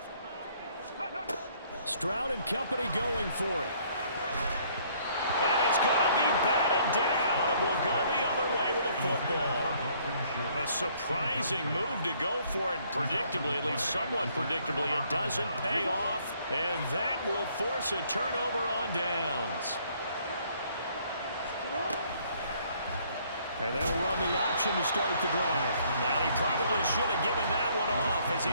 Stroud and company going for it. And it's going to be batted down. It will go the other way with a football. A surprising move to go for it. Predictably, at least somewhat predictably, it doesn't pay off. And that will force a turnover on downs. And they'll run the option to start the drive. And he probably should have given that one off as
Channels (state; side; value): inverted; both; correlation -0.63